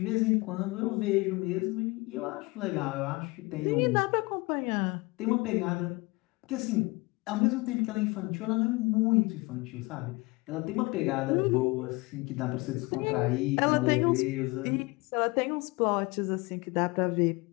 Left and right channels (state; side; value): quieter; right; 24.7 dB